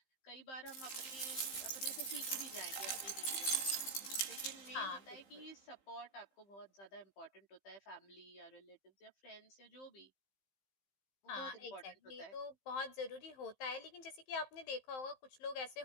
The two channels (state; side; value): late; right; 15 ms